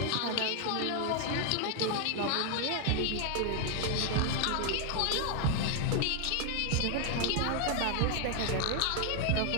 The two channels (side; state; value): both; different; correlation 0.00